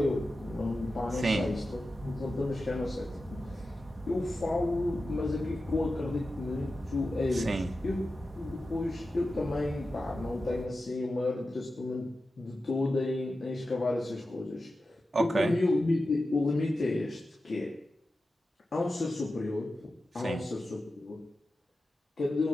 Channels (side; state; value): both; normal; correlation 0.92